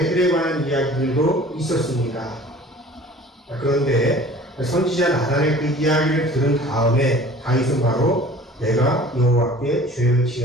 관한 이야기들도 있었습니다. 그런데 선지자 나단의 그 이야기를 들은 다음에 다윗은 바로 내가 여호와께 죄를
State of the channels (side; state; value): both; normal; correlation 0.47